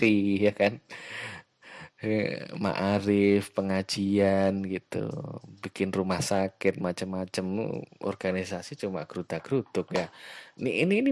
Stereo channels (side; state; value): both; identical; correlation 1.00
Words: ya kan. Ma'arif, pengajian gitu, bikin rumah sakit macam-macam, organisasi cuma gerudak-geruduk ya.